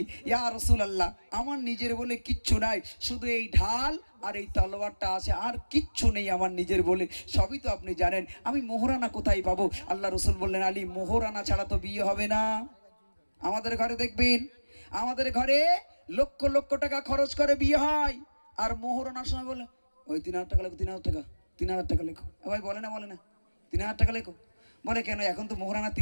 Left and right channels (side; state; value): both; inverted; correlation -1.00